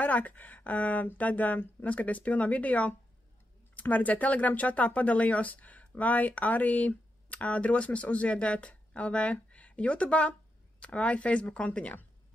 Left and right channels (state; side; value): normal; both; correlation 0.85